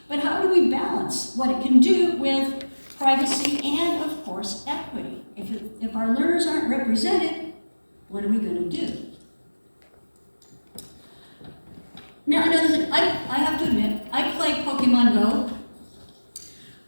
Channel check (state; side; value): inverted; both; correlation -1.00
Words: but how do we balance what it can do with privacy and, of course, equity? If our learners aren't represented, what are we going to do? Now, another thing, I have to admit, I play Pokemon Go.